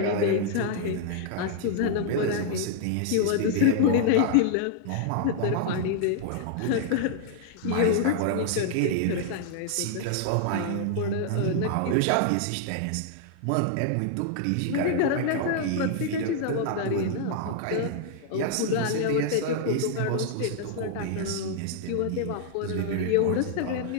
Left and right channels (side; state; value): both; different; correlation 0.00